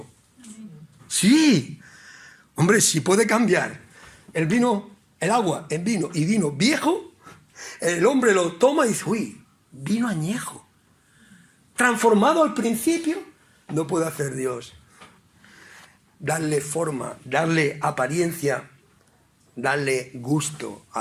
Sí. Hombre, si puede cambiar el vino, el agua en vino y vino viejo, el hombre lo toma y dice, uy, vino añejo. Transformado al principio, no puede hacer Dios. Darle forma, darle apariencia, darle gusto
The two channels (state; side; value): identical; both; correlation 1.00